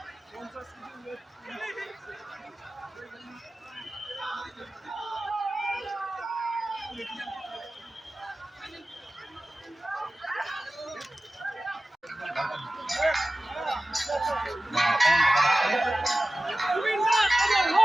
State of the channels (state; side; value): normal; both; correlation 0.96